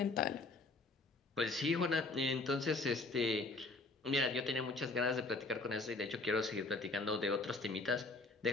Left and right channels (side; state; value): right; quieter; 3.4 dB